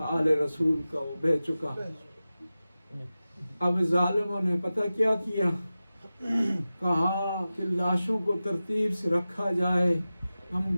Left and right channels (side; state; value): both; inverted; correlation -0.95